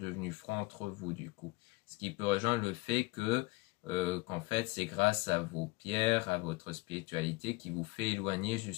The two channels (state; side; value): quieter; right; 22.8 dB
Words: froides entre vous du coup. Ce qui peut rejoindre le fait que qu'en fait c'est grâce à vos pierres, à votre spiritualité qui vous fait éloigner